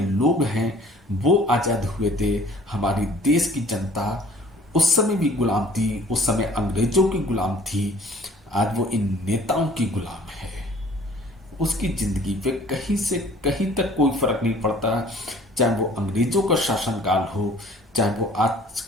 हैं, वो आज़ाद हुए थे। हमारी देश की जनता उस समय भी गुलाम थी, उस समय अंग्रेजों की गुलाम थी। आज वो इन नेताओं की गुलाम है। उसकी जिंदगी पे कहीं से कहीं तक कोई फर्क नहीं पड़ता, चाहे वो अंग्रेजों का शासनकाल हो, चाहे वो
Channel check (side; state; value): both; normal; correlation 0.52